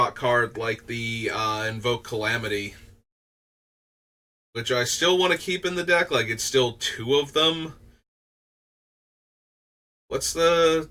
card like the Invoke Calamity, which I still want to keep in the deck. Like, it's still two of them. What's the...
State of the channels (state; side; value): identical; both; correlation 1.00